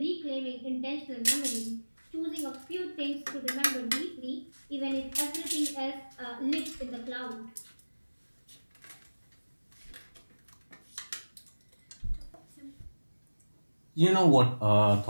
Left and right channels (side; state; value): both; inverted; correlation -1.00